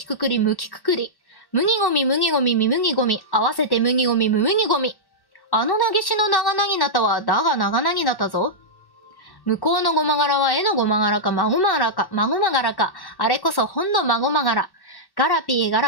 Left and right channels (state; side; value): late; right; 1.1 ms